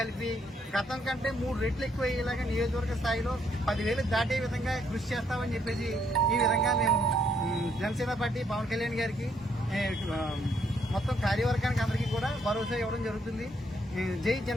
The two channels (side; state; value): both; normal; correlation 0.71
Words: గతం కంటే 3 రెట్లు ఎక్కువ అయ్యేలాగా నియోజకవర్గ స్థాయిలో 10,000 దాటే విధంగా కృషి చేస్తామని చెప్పేసి ఈ విధంగా మేము జనసేన పార్టీ పవన్ కళ్యాణ్ గారికి మొత్తం కార్యవర్గానికి అందరికీ కూడా భరోసా ఇవ్వడం జరుగుతుంది. జై